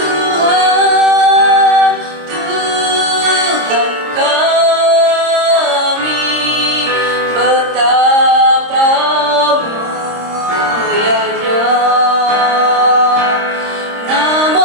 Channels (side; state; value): left; late; 26 ms